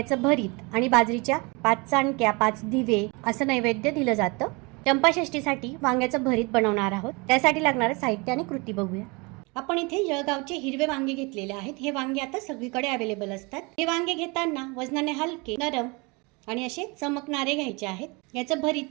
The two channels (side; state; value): left; quieter; 28.0 dB